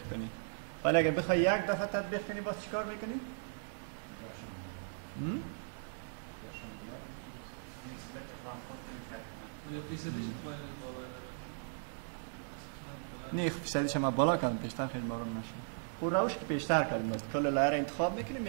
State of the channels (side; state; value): left; silent; digital silence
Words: کنی. ولی اگه بخوای یک دفعه تطبیق کنی باز چیکار میکنی؟ نه فیصدیش ما بالا کردم پیشتر خیلی مارون نشد. او روش که پیشتر کردیم باید کل لایر انتخاب میکنی